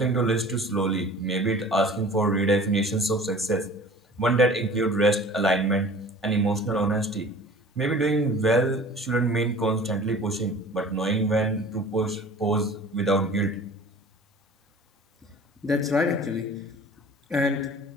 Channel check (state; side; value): normal; both; correlation 0.44